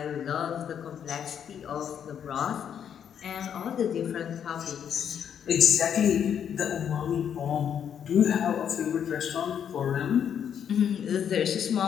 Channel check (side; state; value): right; quieter; 8.5 dB